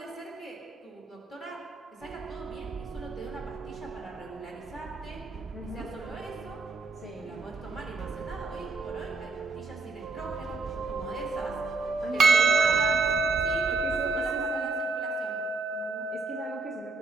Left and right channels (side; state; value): left; quieter; 3.8 dB